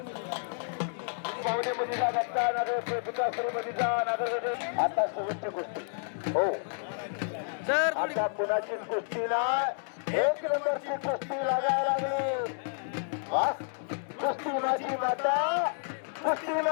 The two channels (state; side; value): silent; right; digital silence